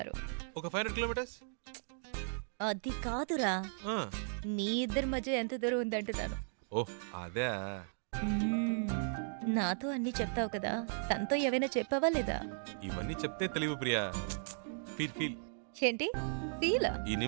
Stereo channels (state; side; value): silent; left; digital silence